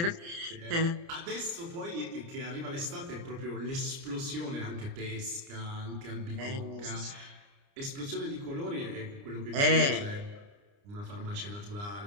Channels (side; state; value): left; late; 29 ms